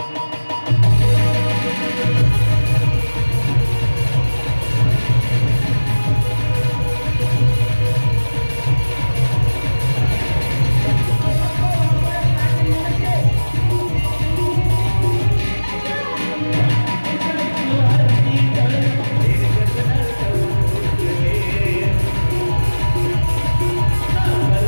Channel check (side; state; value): both; inverted; correlation -1.00